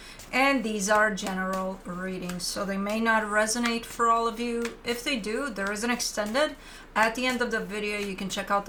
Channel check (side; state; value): both; identical; correlation 1.00